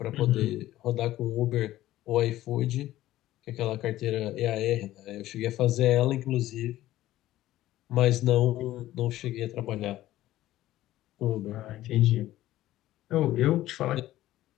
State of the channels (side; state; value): right; quieter; 14.9 dB